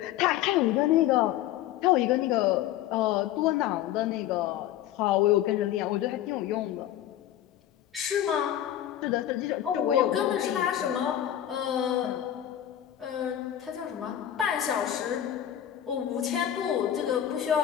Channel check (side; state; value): right; quieter; 11.7 dB